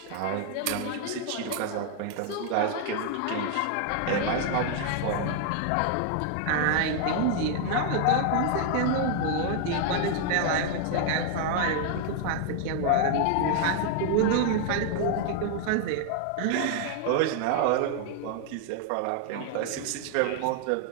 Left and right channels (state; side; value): different; both; correlation 0.00